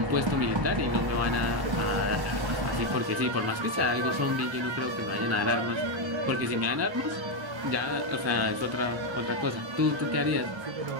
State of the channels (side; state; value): left; late; 1.1 ms